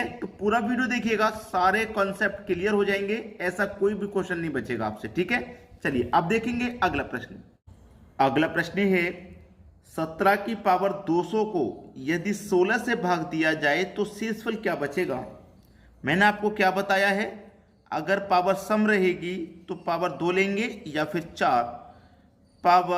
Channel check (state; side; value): identical; both; correlation 1.00